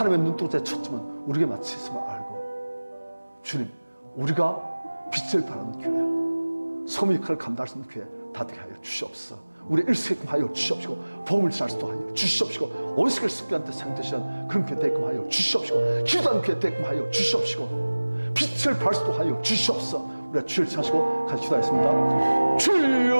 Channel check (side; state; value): both; inverted; correlation -1.00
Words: 눈동자의 초점은 우리에게 맞춰 있음을 알고 주님, 우리가 빛을 발하는 교회, 소명 역할을 감당할 수 있는 교회 다 되게 하여 주시옵소서. 우리 일수게끔 하여 주시옵시고 복음을 전할 수도 하여 주시옵시고 원수를 습기한테 상대시한 그런 교회 되게끔 하여 주시옵시고 기도하는 교회 되게끔 하여 주시옵시고 빛을 발할 수도 하여 주시옵소서. 우리가 주를 찾으시고 같이 기도하겠습니다.